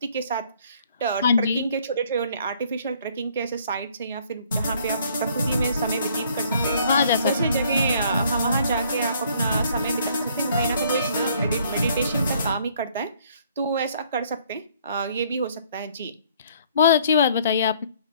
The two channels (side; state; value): both; inverted; correlation -0.62